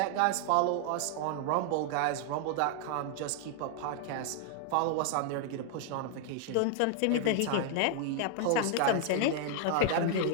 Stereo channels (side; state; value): both; different; correlation 0.00